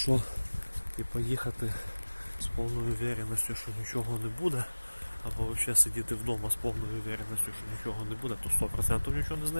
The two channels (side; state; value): both; inverted; correlation -1.00